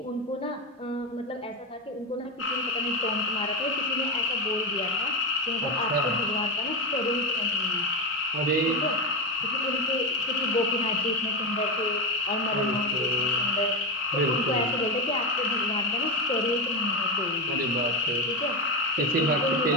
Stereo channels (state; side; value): normal; both; correlation 0.14